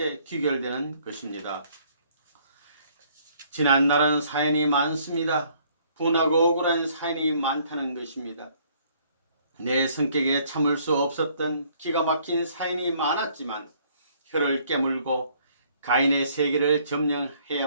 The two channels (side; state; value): both; inverted; correlation -0.62